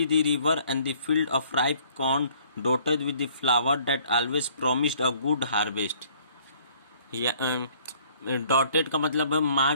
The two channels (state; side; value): inverted; both; correlation -0.59